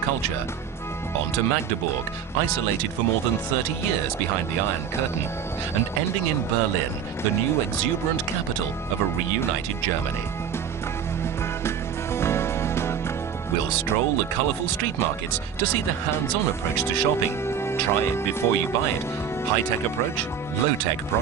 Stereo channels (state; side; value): quieter; left; 7.7 dB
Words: culture. On to Magdeburg, isolated for more than 30 years behind the Iron Curtain, and ending in Berlin, the new exuberant capital of a reunited Germany. We'll stroll the colourful street markets to see the hands-on approach to shopping. Try it before you buy it. High-tech approach, low-tech